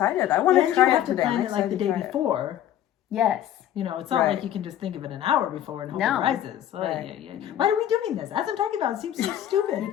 I want And to you try have it to today. plan I'm it like the excited day to try it. before. Yes. You know, it's not Right. like you can just think of it an hour before and hope No. it rises. Oh, Right. yeah, yeah. Why are we doing this? As I'm talking about, it seems so stupid.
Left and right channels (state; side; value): quieter; right; 11.6 dB